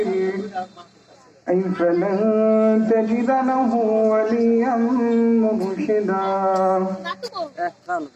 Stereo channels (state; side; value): identical; both; correlation 1.00